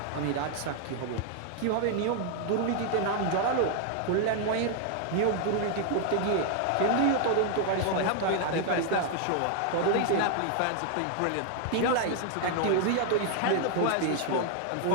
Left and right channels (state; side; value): different; both; correlation 0.00